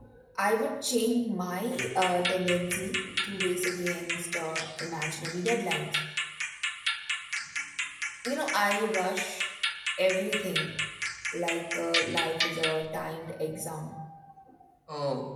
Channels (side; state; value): both; identical; correlation 1.00